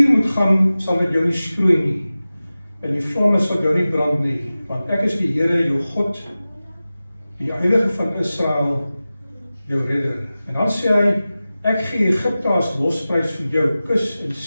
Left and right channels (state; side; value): inverted; both; correlation -0.96